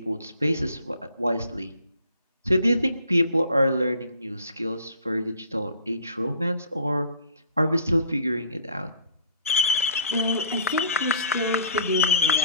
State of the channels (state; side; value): inverted; both; correlation -0.52